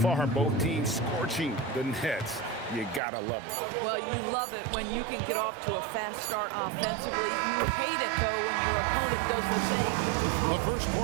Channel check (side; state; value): left; drops out; at 3.0 s